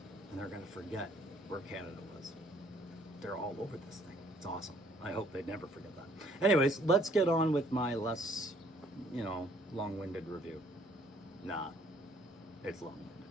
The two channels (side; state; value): both; normal; correlation 0.62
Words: and they're going to forget where Canada was. They're all over this thing. It's awesome. I hope they never forget that. Anyways, let's get on with my less, long-winded review. Nah, it's long-winded.